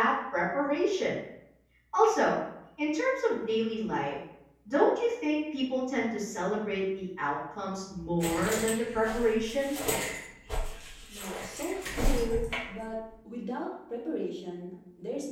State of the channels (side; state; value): both; identical; correlation 1.00